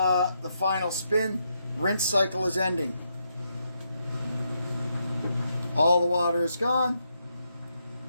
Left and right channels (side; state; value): both; inverted; correlation -0.80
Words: final spin. Rinse cycle is ending. All the water is gone.